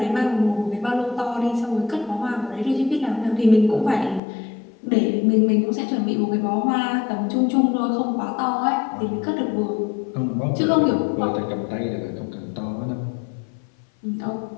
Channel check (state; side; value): drops out; right; at 4.2 s